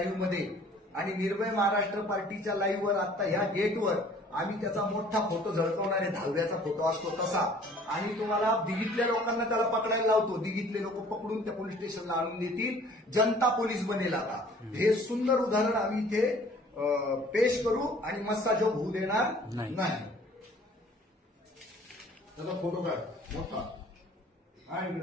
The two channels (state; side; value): normal; both; correlation 0.53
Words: मध्ये आणि निर्भय महाराष्ट्र पार्टीच्या लाईव्हवर आता ह्या गेटवर आम्ही त्याचा मोठा फोटो झळकवणार आहे. 10व्याचा फोटो असतो तसा. आणि तुम्हाला दिघीतल्या लोकांना त्याला पकडायला लावतो. दिघीतले लोक पकडून त्या पोलीस स्टेशनला आणून देतील. जनता पोलीस बनेल आता. हे सुंदर उदाहरण आम्ही इथे पेश करू आणि मस्ताजोग होऊ देणार नाही. त्याचा फोटो काढ मोठा. आणि